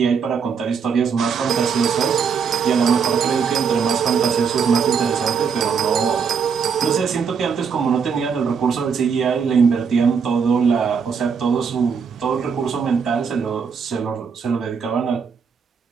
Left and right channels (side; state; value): left; quieter; 6.2 dB